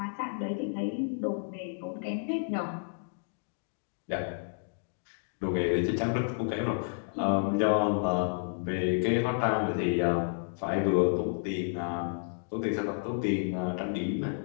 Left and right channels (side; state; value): right; silent; digital silence